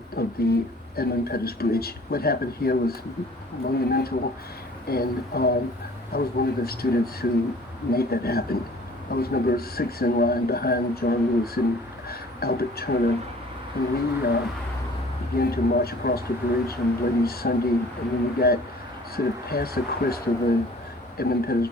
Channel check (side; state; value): both; normal; correlation 0.50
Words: of the Edmund Pettus Bridge. What happened here was monumental, and I was one of the students who made that happen. I was number 6 in line behind John Lewis and Albert Turner, and we began to march across the bridge on Bloody Sunday, and when we got sort of past the crest of the Edmund Pettus